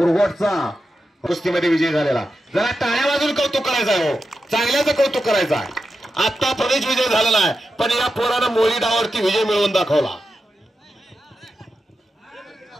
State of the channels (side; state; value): both; normal; correlation 0.90